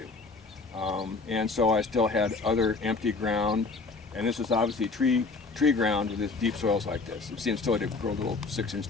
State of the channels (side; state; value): right; quieter; 4.0 dB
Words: And so I still had other empty ground, and this was obviously tree ground with this deep soils like this. It seems still to grow a little 6-inch